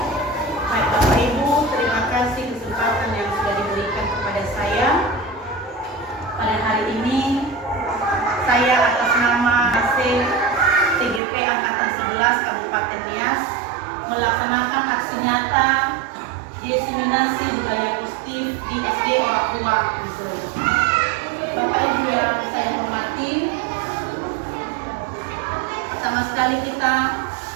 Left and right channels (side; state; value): left; drops out; at 11.2 s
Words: Baik Bapak Ibu, terima kasih kesempatan yang sudah diberikan kepada saya. Pada hari ini, saya atas nama AC TGP Angkatan 11 Kabupaten Nias melaksanakan aksi nyata diseminasi budaya positif di SD Orang Tua Missouri. Bapak Ibu yang saya hormati, sama sekali kita